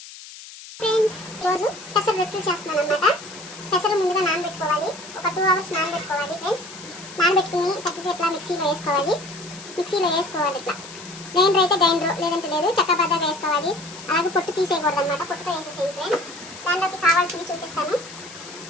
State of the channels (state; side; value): noise; left; hiss, 15 dB below the sound